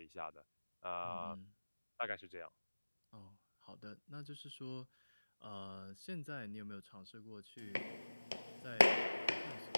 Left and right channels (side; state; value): both; inverted; correlation -1.00